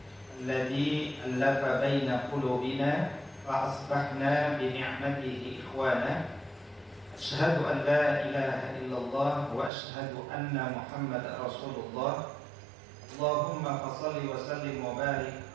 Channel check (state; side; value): drops out; left; at 9.7 s